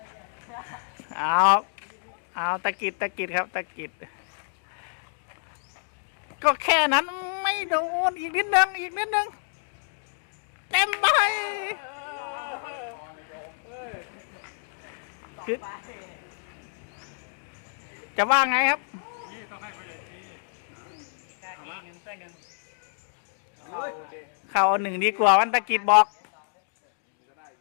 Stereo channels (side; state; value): right; silent; digital silence